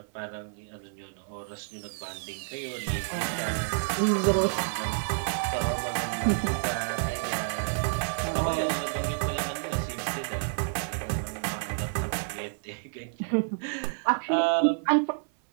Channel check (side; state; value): left; silent; 58 dB below the other